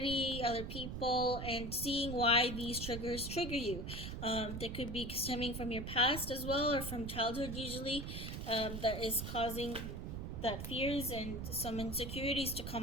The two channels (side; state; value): right; noise; rumble, 6 dB below the sound